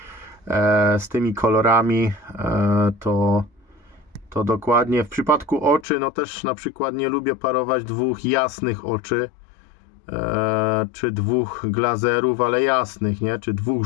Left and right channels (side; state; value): right; drops out; at 5.9 s